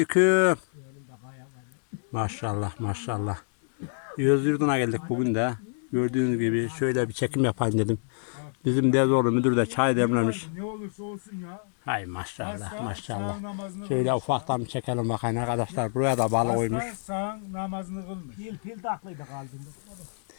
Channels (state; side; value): silent; right; digital silence